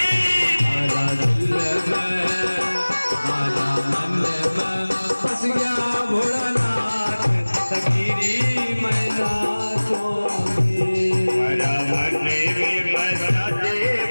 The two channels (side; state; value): both; inverted; correlation -1.00